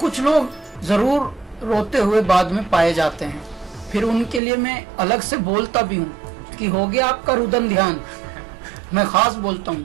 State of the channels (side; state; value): left; drops out; at 4.4 s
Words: लोग जरूर रोते हुए बाद में पाए जाते हैं, फिर उनके लिए मैं अलग से बोलता भी हूँ कि हो गया आपका रुदन ध्यान, मैं खास बोलता हूँ।